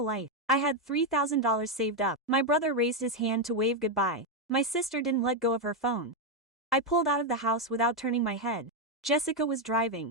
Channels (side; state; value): both; normal; correlation 0.04